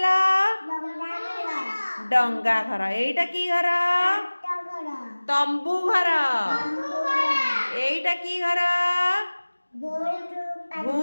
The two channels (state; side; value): inverted; both; correlation -1.00